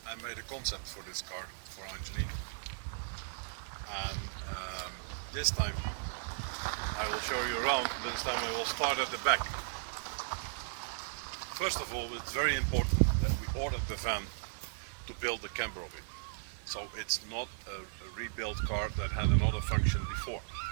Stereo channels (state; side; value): silent; left; 54 dB below the other